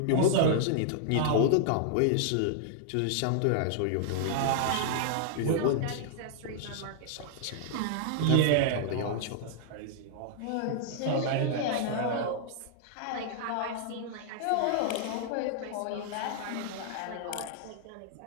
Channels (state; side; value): different; both; correlation -0.01